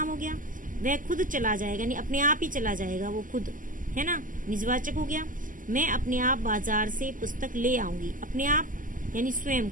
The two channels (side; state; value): left; late; 0.38 ms